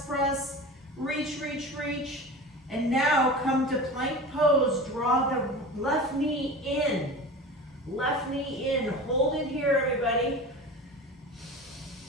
press. Reach, reach, reach. And now come to plank pose. Draw the left knee in. Left knee in. Hold it here, everybody.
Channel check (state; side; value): normal; both; correlation 0.33